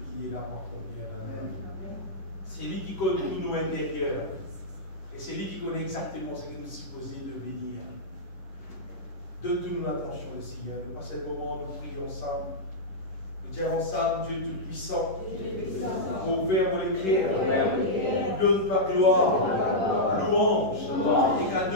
qui est là pour accomplir dans nous. C'est lui qui connaît tout nos intérieurs. Et c'est lui qui connaît exactement ce que nous sommes supposés devenir. Donne-nous l'attention, le Seigneur. À ce moment, nous prions ensemble. Nous disons ensemble, Dieu Tout-Puissant, ouvert pour l'écrire, nous donne ta gloire, louange et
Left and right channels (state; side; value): late; right; 10 ms